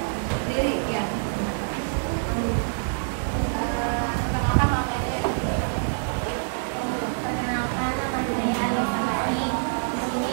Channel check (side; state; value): left; silent; digital silence